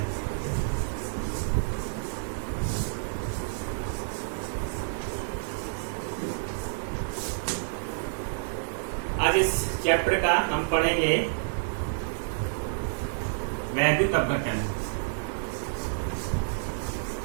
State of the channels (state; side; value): silent; left; 59 dB below the other